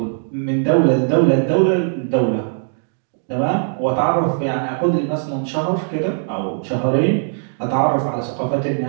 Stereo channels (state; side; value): silent; left; digital silence